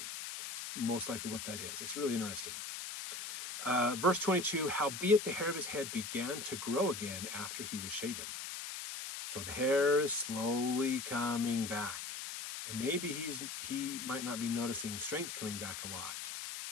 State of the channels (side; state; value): left; noise; hiss, 6 dB below the sound